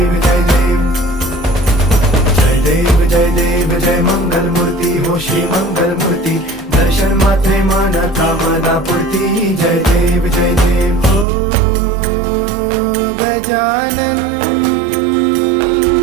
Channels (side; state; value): left; drops out; at 11.2 s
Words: जय देव जय देव जय देव जय मंगल मूर्ती हो श्री मंगल मूर्ती, दर्शन मात्रे मन कामना पूर्ती. जय देव जय देव ओ गजानन